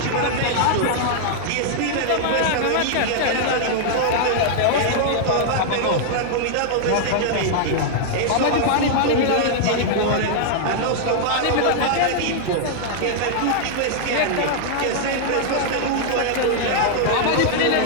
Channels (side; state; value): both; different; correlation -0.01